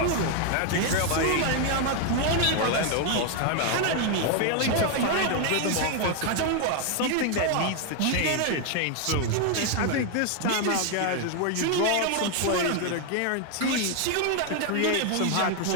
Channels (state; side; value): different; both; correlation 0.01